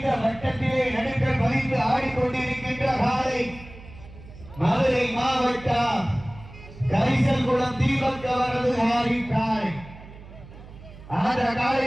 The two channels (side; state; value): right; noise; hum, 18 dB below the sound